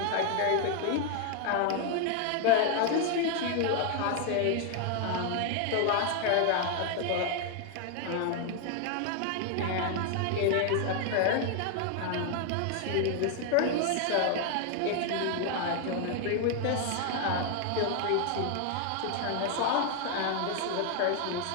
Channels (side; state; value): both; different; correlation 0.00